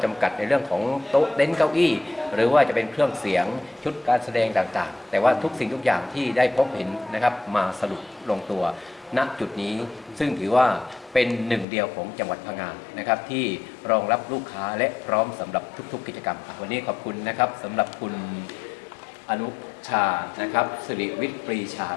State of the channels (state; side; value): drops out; right; at 11.7 s